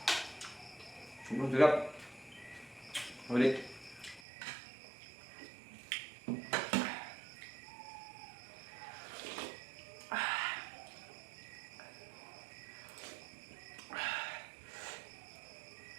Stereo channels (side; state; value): left; drops out; at 4.2 s